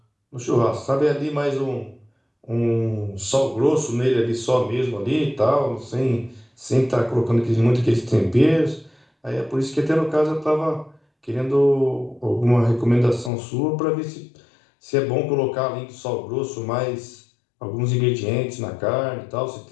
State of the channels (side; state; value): right; drops out; at 13.3 s